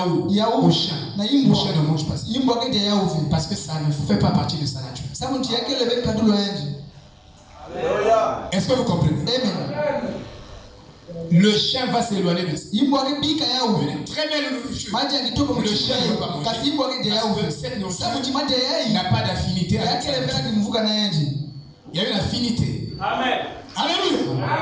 au chien, le chien ne mange pas ça. Parce que ça ne fait pas partie de sa nature. Est-ce que vous comprenez? Le chien va s'éloigner de ça. Très belle nourriture. Le chien ne va pas manger. Parce que cette nourriture n'a pas d'affinité avec sa nourriture. Il y a une affinité. Amen. Alléluia.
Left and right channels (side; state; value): both; identical; correlation 1.00